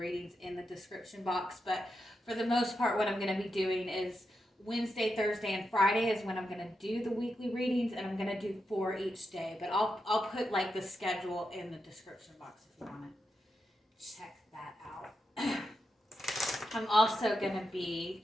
in the description box, but for the most part what I'm going to be doing is Wednesday, Thursday, and Friday is when I'm going to do the weekly readings, and I'm going to do 4 each day. But I'll put like the schedule in the description box if you want to check that out. I'm also going to be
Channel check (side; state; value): both; normal; correlation 0.86